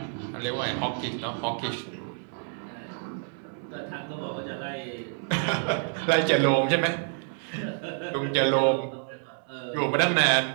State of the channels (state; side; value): silent; left; 59 dB below the other